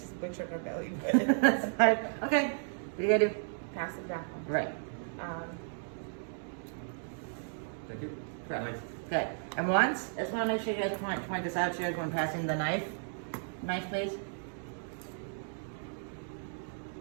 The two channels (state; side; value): silent; left; digital silence